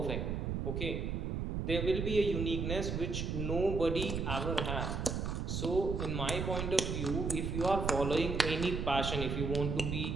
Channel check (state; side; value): noise; right; rumble, 2 dB below the sound